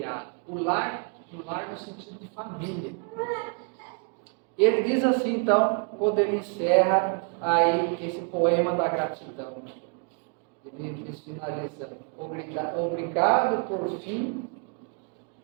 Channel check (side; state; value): left; quieter; 39.1 dB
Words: o lar no sentido de família. Ele diz assim, então, quando ele encerra aí esse poema da gratidão, ele diz, finalizando: obrigado por fim